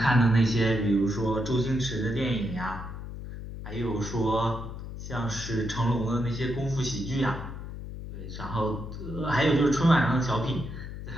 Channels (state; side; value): noise; left; hum, 9 dB below the sound